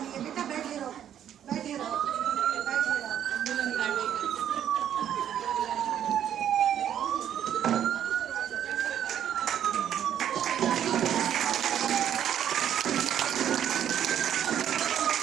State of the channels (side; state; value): left; quieter; 10.0 dB